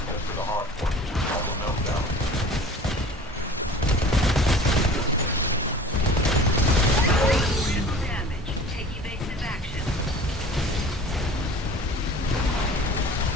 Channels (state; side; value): normal; both; correlation 0.44